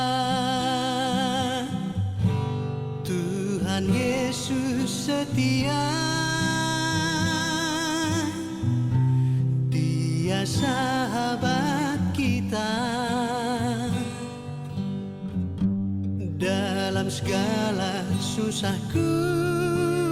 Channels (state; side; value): identical; both; correlation 1.00